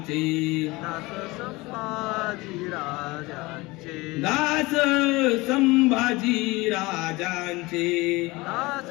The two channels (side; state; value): right; quieter; 22.3 dB